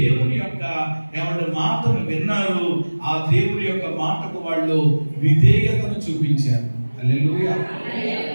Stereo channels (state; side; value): inverted; both; correlation -1.00